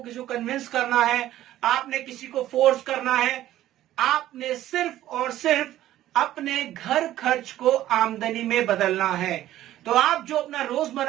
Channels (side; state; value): left; quieter; 13.7 dB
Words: किसी को कन्विंस करना है, आपने किसी को फोर्स करना है। आपने सिर्फ और सिर्फ अपने घर खर्च को आमदनी में बदलना है। तो आप जो अपना